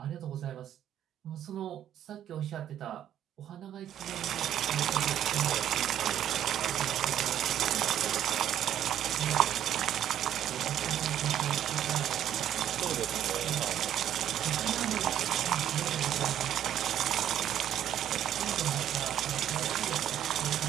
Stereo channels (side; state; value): left; quieter; 10.7 dB